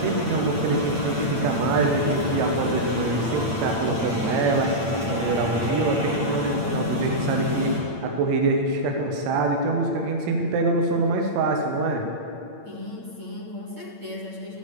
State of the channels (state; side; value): late; left; 8.8 ms